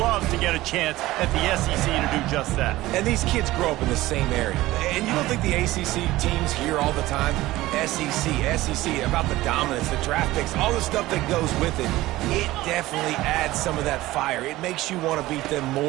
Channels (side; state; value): left; quieter; 17.4 dB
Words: to get a chance at the SEC to do just that. And these kids grow up in the same area. And you don't think the ACC teams hear all the time, SEC, about the dominance, the draft picks, all the stuff that goes with it. It definitely adds some of that fire. It makes you want to beat them